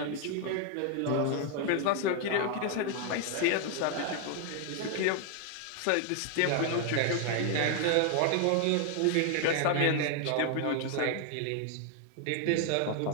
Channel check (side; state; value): both; different; correlation 0.00